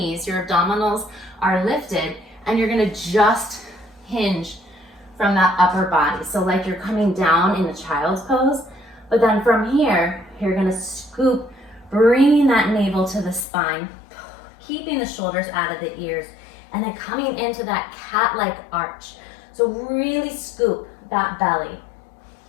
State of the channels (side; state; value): right; drops out; at 13.5 s